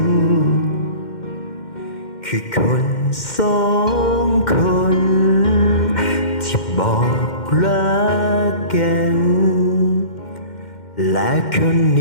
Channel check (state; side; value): late; right; 2.1 ms